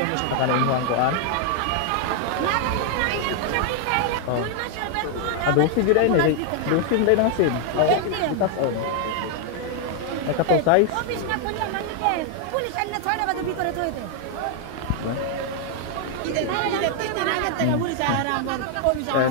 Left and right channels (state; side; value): different; both; correlation 0.00